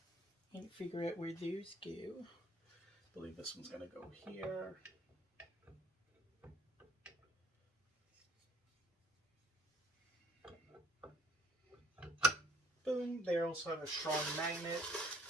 And figure out where those go. I believe this one's gonna go here. Boom. They also have a strong magnet.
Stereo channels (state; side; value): normal; both; correlation 0.60